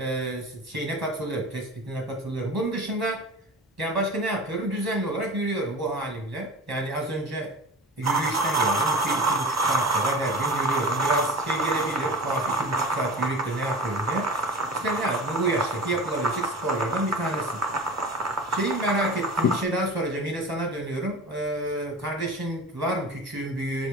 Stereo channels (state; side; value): normal; both; correlation 0.34